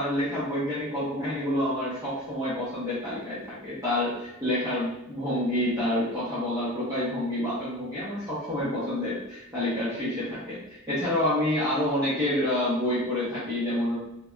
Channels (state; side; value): normal; both; correlation 0.35